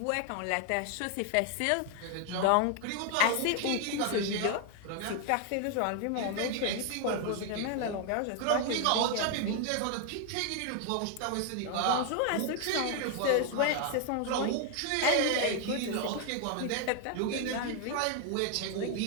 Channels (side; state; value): both; different; correlation 0.01